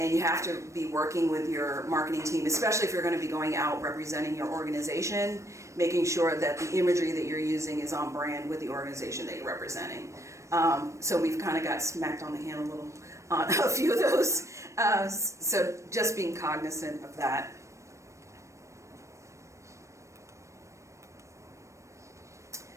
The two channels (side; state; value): left; late; 0.15 ms